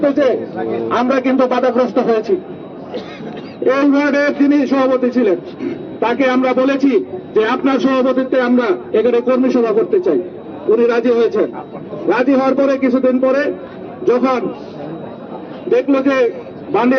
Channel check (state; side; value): identical; both; correlation 1.00